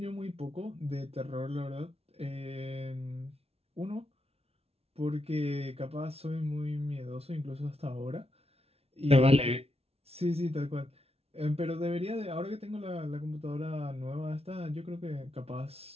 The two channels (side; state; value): left; late; 0.30 ms